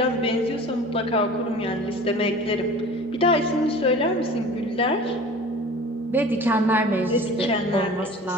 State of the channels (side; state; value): both; normal; correlation 0.41